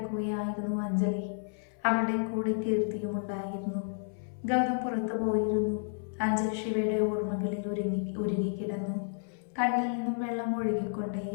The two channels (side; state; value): right; silent; 57 dB below the other